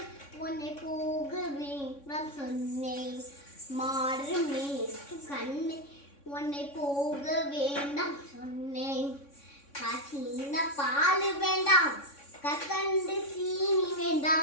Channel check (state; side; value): late; right; 3.6 ms